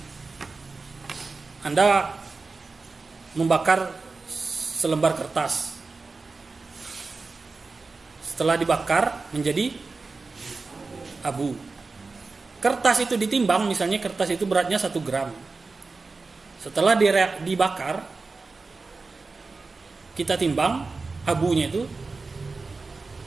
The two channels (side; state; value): left; quieter; 4.0 dB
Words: Anda membakar selembar kertas. Setelah dibakar menjadi abu. Kertas itu ditimbang, misalnya kertas itu beratnya 1 gram. Setelah dibakar, kita timbang abunya itu